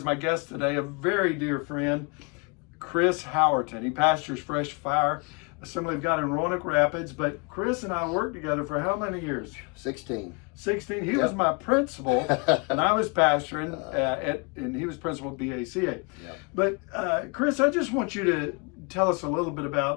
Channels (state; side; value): quieter; right; 33.0 dB